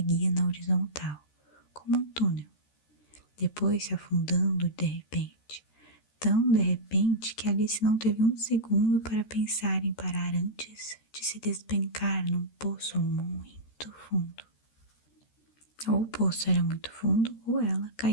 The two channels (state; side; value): late; right; 13 ms